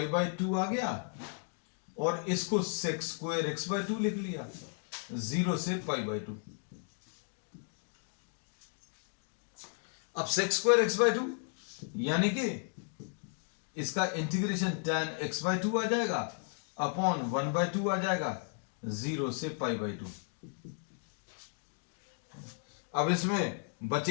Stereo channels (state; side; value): silent; right; 55 dB below the other